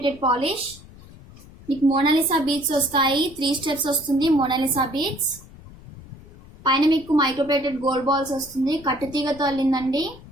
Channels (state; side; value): noise; left; rumble, 20 dB below the sound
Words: పాలిష్. మీకు మోనాలిసా బీడ్స్ వస్తాయి. 3 స్టెప్స్ వస్తుంది మోనాలిసా బీడ్స్. పైన మీకు మైక్రోప్లేటెడ్ గోల్డ్ బాల్స్ వస్తుంది. కట్టు తీగతో అల్లిందండి.